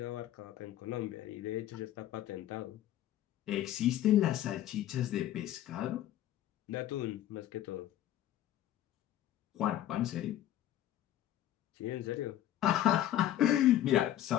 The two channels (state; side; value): quieter; right; 12.7 dB